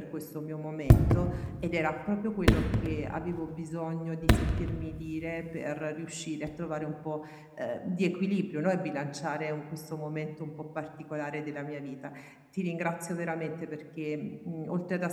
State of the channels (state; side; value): identical; both; correlation 1.00